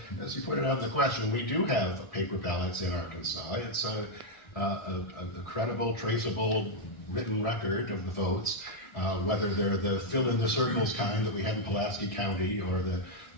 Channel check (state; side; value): late; right; 1.7 ms